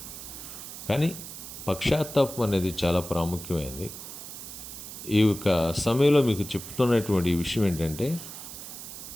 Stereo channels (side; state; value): right; noise; hiss, 11 dB below the sound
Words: కానీ పశ్చాత్తాపం అనేది చాలా ప్రాముఖ్యమైనది. ఈ యొక్క సమయంలో మీకు చెప్తున్నటువంటి ఈ విషయం ఏంటంటే,